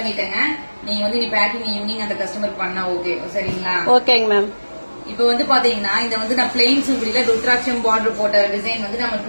நீங்க வந்து நீ பேக்கிங் ஈவினிங் அந்த கஸ்டமர் பண்ணா ஓகே சரிங்களா? ஓகேங்க மேம். இப்ப வந்து பாத்தீங்கன்னா இந்த வந்து நான் பிளெயின் சுங்குடியில ருத்ராட்சம் பார்டர் போட்ட டிசைன் வந்து நம்ம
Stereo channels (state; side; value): inverted; both; correlation -1.00